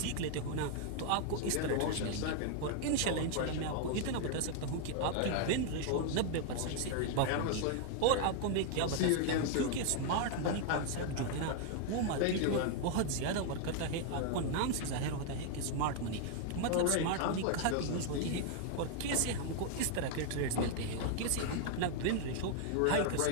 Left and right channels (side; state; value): both; different; correlation 0.00